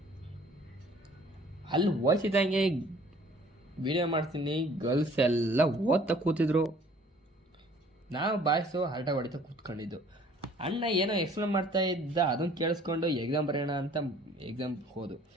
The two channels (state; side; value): normal; both; correlation 0.55